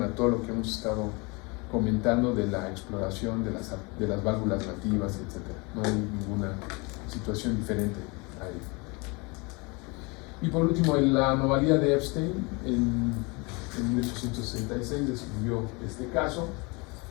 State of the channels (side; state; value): right; quieter; 28.4 dB